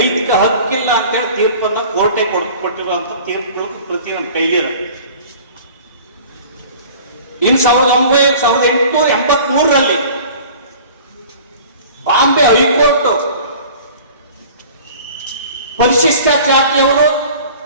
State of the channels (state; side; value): inverted; both; correlation -0.45